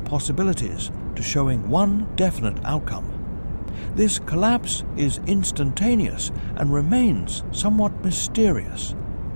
to showing one definite outcome. This collapse is instantaneous and remains somewhat mysterious.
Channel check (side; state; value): both; inverted; correlation -1.00